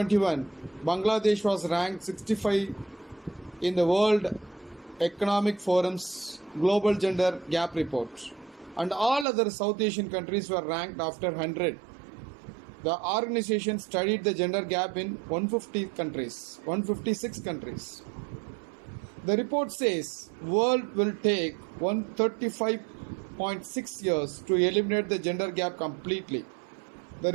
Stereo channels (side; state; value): left; drops out; at 9.2 s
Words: Bangladesh was ranked 65 in the World Economic Forum's Global Gender Gap Report, and all other South Asian countries were ranked after 100. The organization studied the gender gap in 156 countries. The report says world will take 135.6 years to eliminate the gender gap completely. The